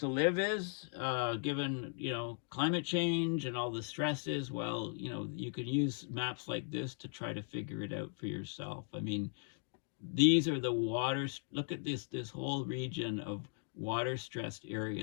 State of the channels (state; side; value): silent; right; 53 dB below the other